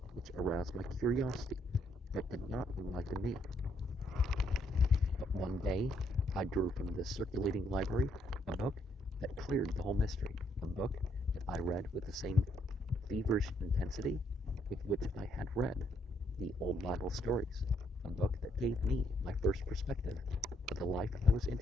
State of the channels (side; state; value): both; normal; correlation 0.72